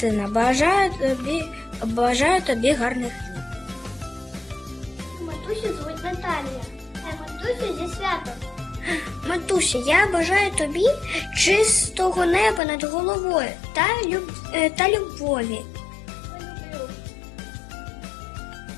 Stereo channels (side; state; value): right; drops out; at 12.6 s